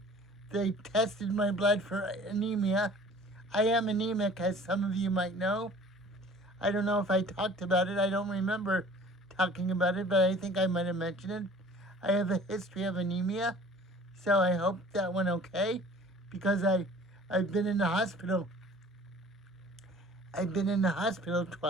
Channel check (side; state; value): both; normal; correlation 0.48